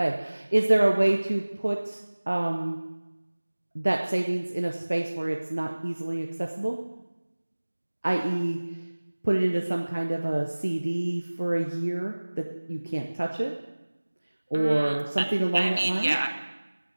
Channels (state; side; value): inverted; both; correlation -1.00